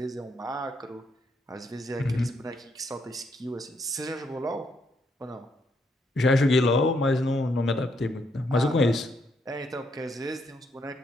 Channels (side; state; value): both; normal; correlation 0.75